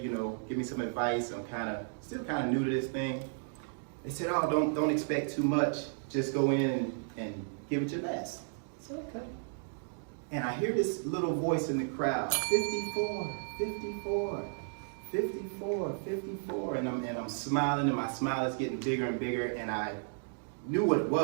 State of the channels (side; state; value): left; silent; digital silence